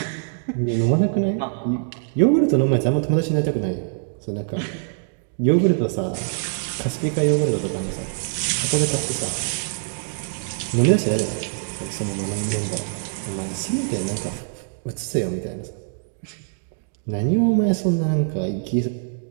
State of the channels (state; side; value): silent; left; digital silence